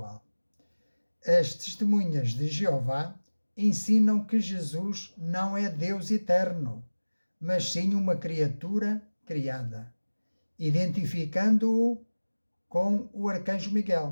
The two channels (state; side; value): inverted; both; correlation -1.00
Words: As testemunhas de Jeová ensinam que Jesus não é Deus eterno, mas sim uma criatura criada, identificando-o com o arcanjo